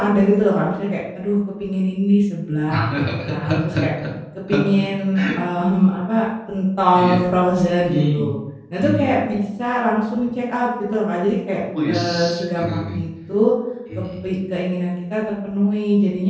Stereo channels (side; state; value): both; identical; correlation 1.00